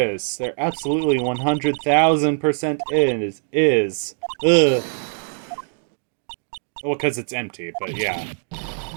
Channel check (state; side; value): silent; left; 59 dB below the other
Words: is. There absolutely 100,000% is. Ugh. Well, because it's empty, but yeah.